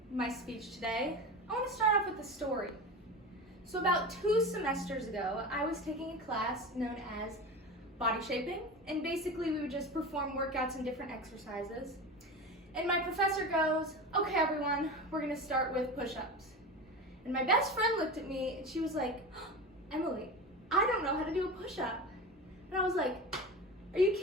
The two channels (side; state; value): both; normal; correlation 0.28